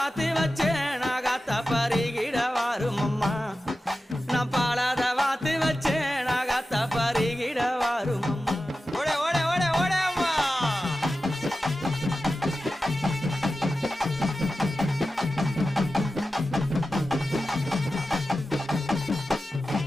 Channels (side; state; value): both; normal; correlation 0.93